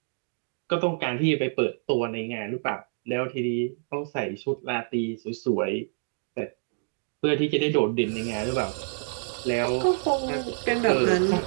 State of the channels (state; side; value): silent; left; digital silence